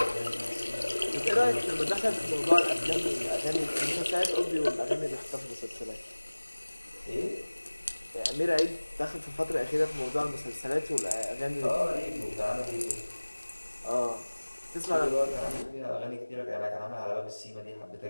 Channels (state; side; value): inverted; both; correlation -1.00